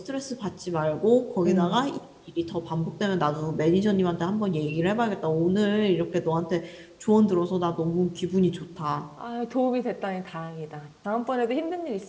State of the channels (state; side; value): identical; both; correlation 1.00